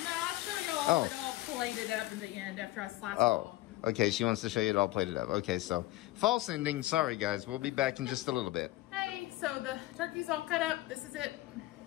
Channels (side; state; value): right; quieter; 17.6 dB